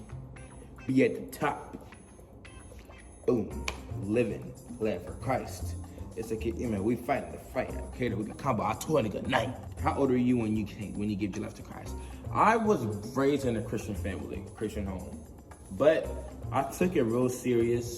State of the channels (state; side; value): identical; both; correlation 1.00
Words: Be at the top. Boom. Living. Glad for Christ. It's a kid, we fighting the fight. Okay, we can combo. I told a nigga night. How old are you when you give your life to Christ? I was raised in a Christian family, Christian home. But I took it real